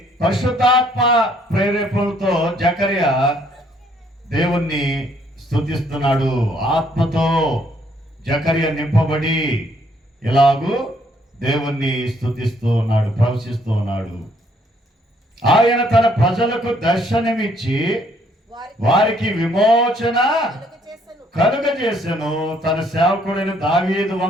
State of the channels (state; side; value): normal; both; correlation 0.67